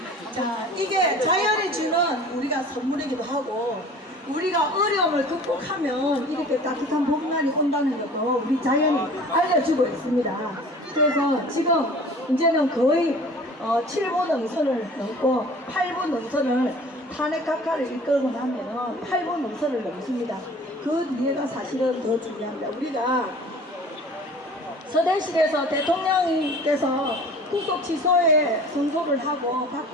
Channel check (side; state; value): both; normal; correlation 0.45